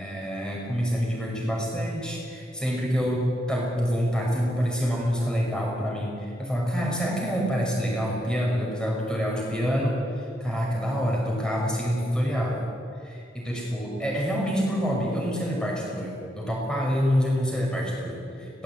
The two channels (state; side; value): normal; both; correlation 0.80